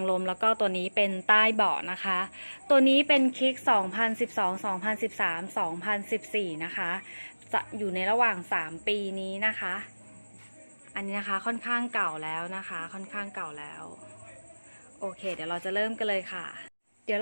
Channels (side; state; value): both; inverted; correlation -1.00